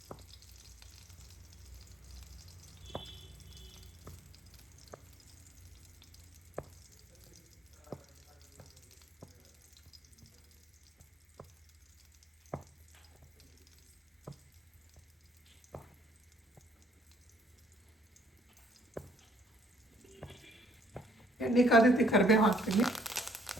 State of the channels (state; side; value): normal; both; correlation 0.64